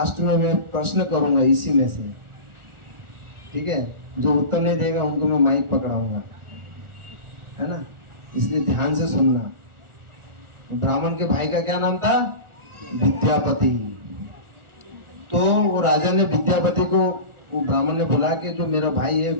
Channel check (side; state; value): left; late; 1.4 ms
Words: में मैं प्रश्न करूंगा इसी में से, ठीक है। जो उत्तर नहीं देगा उनको मैं माइक पकड़ाऊंगा, है ना, इसलिए ध्यान से सुनना। ब्राह्मण के भाई का क्या नाम था, विद्यापति। तो वो राजा ने विद्यापति को, वो ब्राह्मण ने बोला कि जो मेरा भाई है